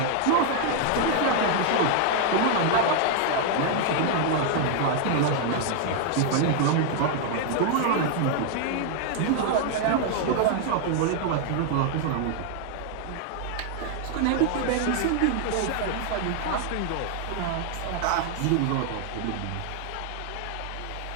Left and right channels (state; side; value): different; both; correlation 0.00